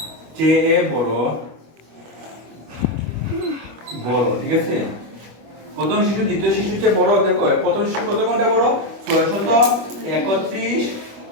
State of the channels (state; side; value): late; left; 25 ms